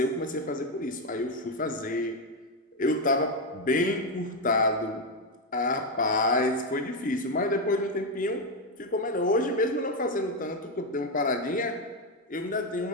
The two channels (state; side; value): normal; both; correlation 0.07